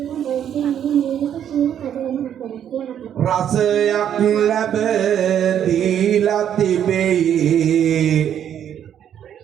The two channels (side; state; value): left; quieter; 9.6 dB